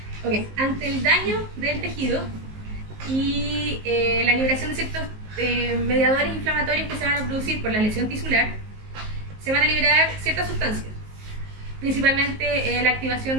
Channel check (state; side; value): late; left; 19 ms